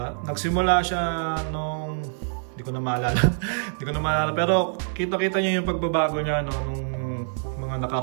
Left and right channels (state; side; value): silent; left; digital silence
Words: nagsimula siya nung hindi ko na maalala pero kita-kita niyo yung pagbabago niya, no, nung mga